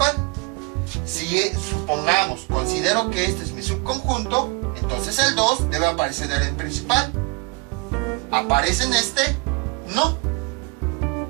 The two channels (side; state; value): left; quieter; 29.6 dB